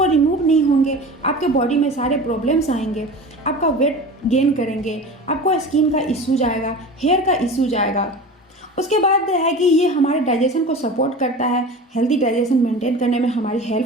रिमूव नहीं होंगे, आपके बॉडी में सारे प्रॉब्लम्स आएंगे, आपका वेट गेन करेंगे, आपको स्किन का इशू जाएगा, हेयर का इशू जाएगा। उसके बाद है कि ये हमारे डाइजेशन को सपोर्ट करता है, हेल्दी डाइजेशन मेंटेन करने में हमारी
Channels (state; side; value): normal; both; correlation 0.34